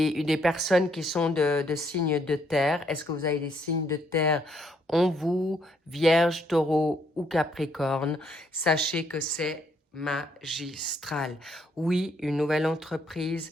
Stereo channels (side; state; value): both; normal; correlation 0.70